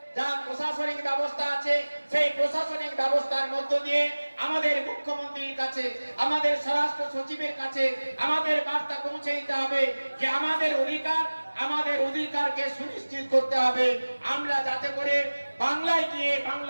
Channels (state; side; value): inverted; both; correlation -1.00